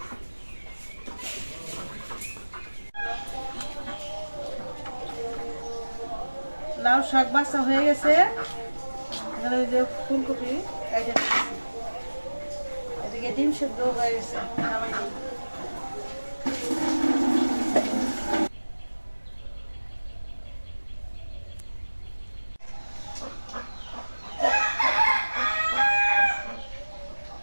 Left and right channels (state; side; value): inverted; both; correlation -1.00